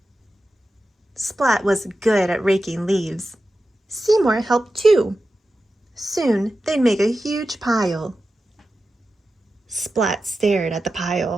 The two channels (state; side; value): normal; both; correlation 0.92